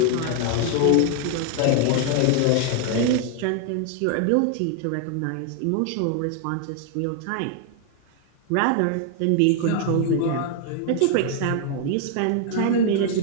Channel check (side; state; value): both; different; correlation 0.00